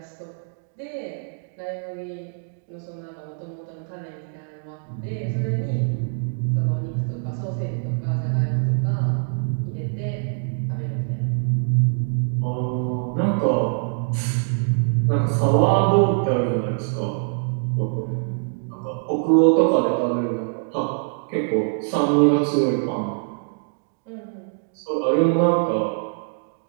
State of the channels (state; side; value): silent; left; digital silence